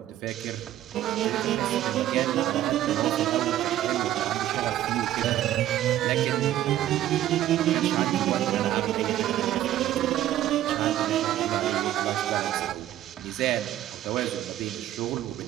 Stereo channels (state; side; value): quieter; left; 12.9 dB